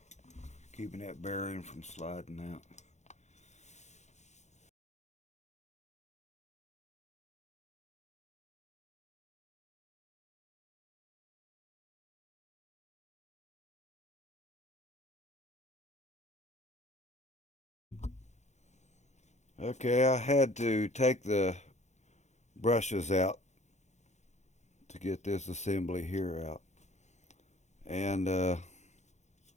keeping that bearing from sliding out. Okay, I had to take the brushes out to get this assembly here out. And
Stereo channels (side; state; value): right; late; 0.33 ms